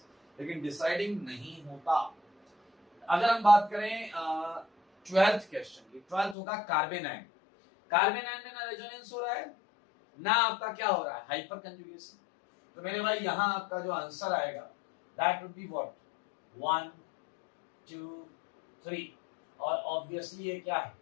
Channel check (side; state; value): right; drops out; at 6.4 s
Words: लेकिन डिसाइडिंग नहीं होता। अगर हम बात करें 12th क्वेश्चन की, 12th होगा कार्बन आयन। कार्बन आयन में ना रेजोनेंस हो रहा है ना आपका क्या हो रहा है? Hyper conjugation. तो मेरे भाई यहाँ आपका जो आंसर आएगा दैट वुड बी व्हाट? 1, 2, 3, और ऑब्वियसली ये क्या है?